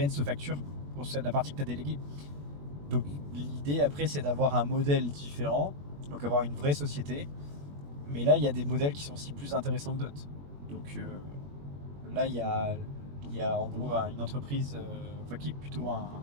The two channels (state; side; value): late; left; 21 ms